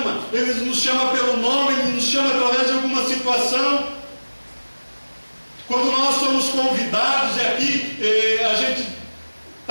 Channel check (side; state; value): both; inverted; correlation -1.00